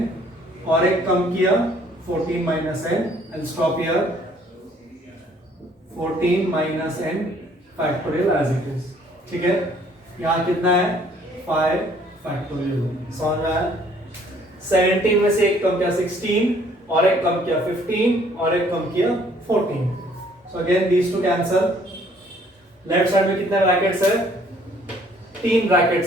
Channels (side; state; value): both; normal; correlation 0.61